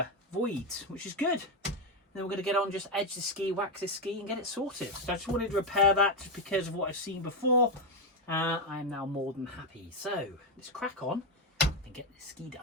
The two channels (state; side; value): normal; both; correlation 0.07